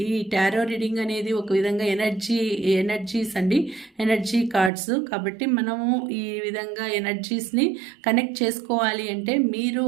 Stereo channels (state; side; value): drops out; left; at 4.7 s